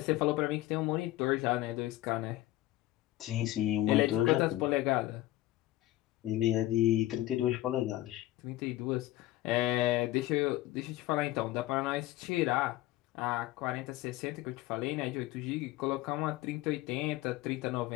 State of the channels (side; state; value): right; quieter; 16.1 dB